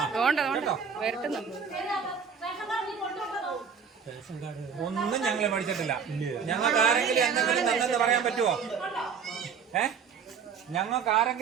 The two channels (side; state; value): left; quieter; 6.5 dB